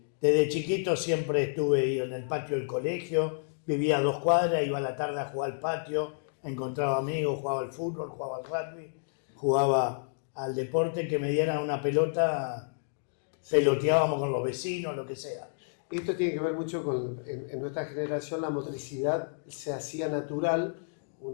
desde chiquito siempre estuve en el patio del colegio, vivía a 2 cuadras, iba a la tarde a jugar al patio, encontraba amigos, jugaba al fútbol, jugaba al rugby, jugaba al deporte que me dieran una pelota, peloteábamos con los vecinos, lo que sea. Esto tiene que ver mucho con, en nuestra generación, la motricidad se hacía natural,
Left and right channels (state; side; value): silent; right; digital silence